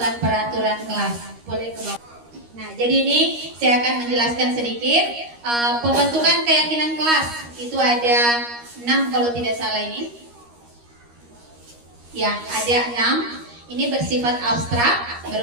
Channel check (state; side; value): late; left; 13 ms